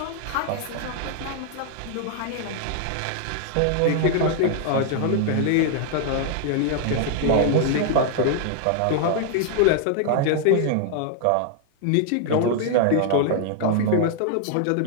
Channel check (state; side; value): different; both; correlation 0.00